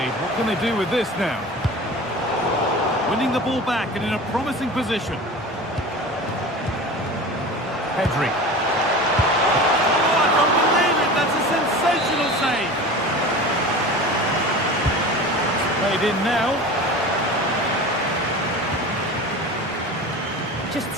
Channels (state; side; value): normal; both; correlation 0.34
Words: What can they do with this now? Winning the ball back and in a promising position. Pedri. Oh, I don't believe it, that's a sensational save. It's played in now. Just